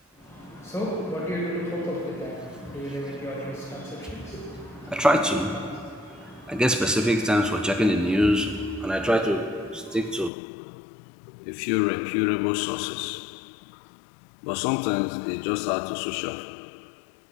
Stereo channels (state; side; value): drops out; right; at 10.3 s